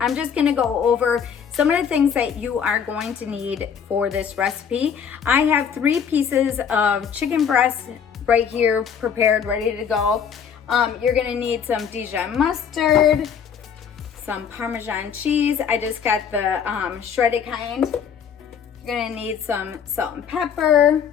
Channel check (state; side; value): quieter; right; 7.4 dB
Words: just gonna go over some of the things that you are going to need for this recipe. I have 3 pieces of chicken breast right here prepared, ready to go. You're gonna need some Dijon mustard, some Parmesan cheese. I just got the shredded kind. You're gonna need some salt and pepper.